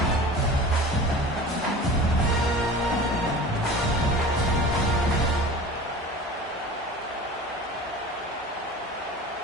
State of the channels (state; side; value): normal; both; correlation 0.38